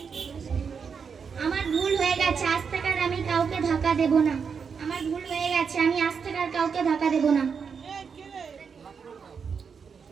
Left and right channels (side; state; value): left; quieter; 6.1 dB